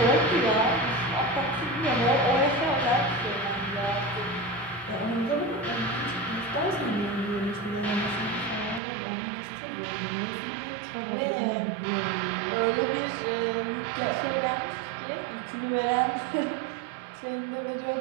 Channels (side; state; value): left; drops out; at 8.8 s